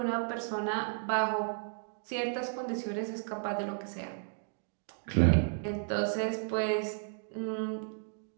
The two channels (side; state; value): left; silent; digital silence